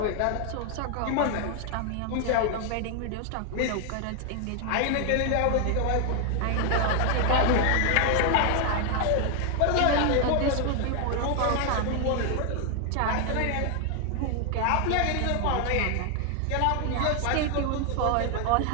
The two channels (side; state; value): both; different; correlation 0.00